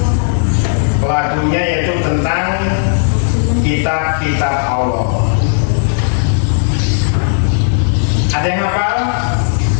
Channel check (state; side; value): silent; right; digital silence